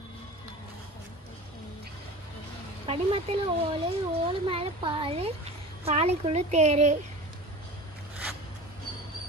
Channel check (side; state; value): both; normal; correlation 0.35